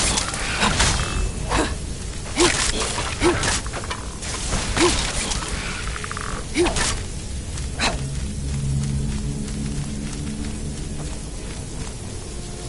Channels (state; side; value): identical; both; correlation 1.00